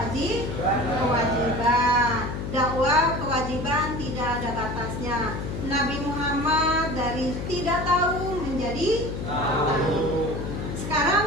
Dakwah kewajiban tidak ada batasnya. Nabi Muhammad dari tidak tahu menjadi tahu.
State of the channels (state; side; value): noise; left; hum, 5 dB below the sound